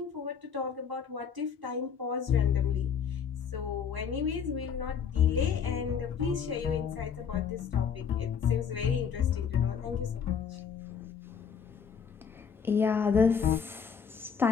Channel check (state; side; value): quieter; right; 6.9 dB